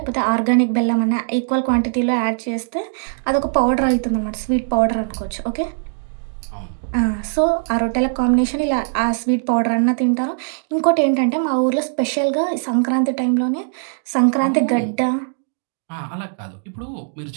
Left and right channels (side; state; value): left; silent; digital silence